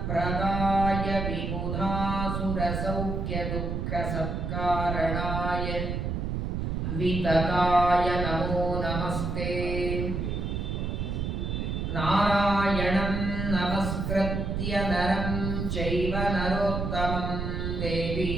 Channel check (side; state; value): right; noise; rumble, 2 dB below the sound